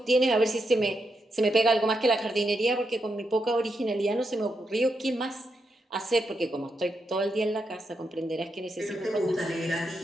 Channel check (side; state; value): both; normal; correlation 0.83